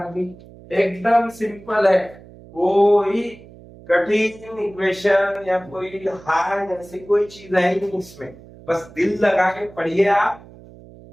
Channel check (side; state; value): right; noise; hum, 21 dB below the sound